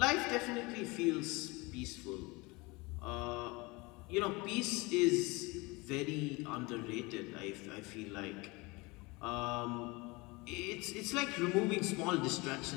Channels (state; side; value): quieter; right; 24.8 dB